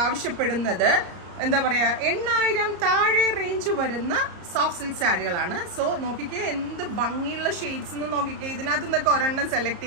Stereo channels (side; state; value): left; late; 34 ms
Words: ആവശ്യപ്പെടുന്നത് എന്താ പറയാ 8000 താഴെ റേഞ്ച് വരുന്ന സോഫ്റ്റ് സിൽക്ക് സാരികളാണ്. സോ നോക്കിക്കേ എന്ത് ഭംഗിയുള്ള ഷെയ്ഡ്സ് എന്ന് നോക്കിക്കേ. ഇതിനകത്ത് നിന്നൊക്കെ ഒരെണ്ണം സെലക്ട്